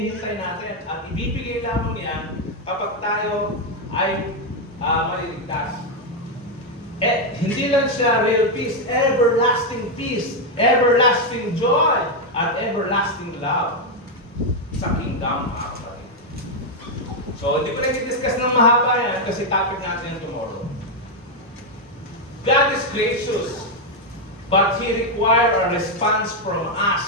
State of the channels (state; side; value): normal; both; correlation 0.02